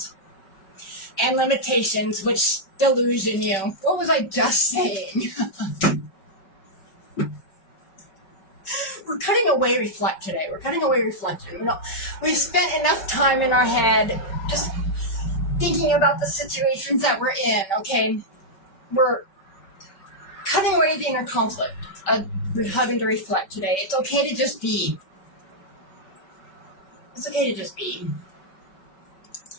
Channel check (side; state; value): right; late; 5.3 ms